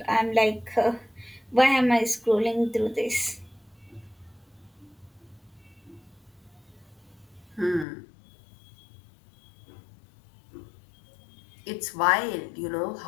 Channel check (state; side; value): drops out; right; at 7.9 s